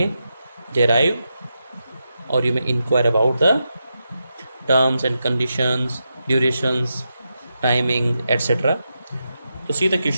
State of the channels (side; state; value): both; inverted; correlation -0.87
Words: derive or you may inquire about the terms and conditions, durations, timing, etc. To see the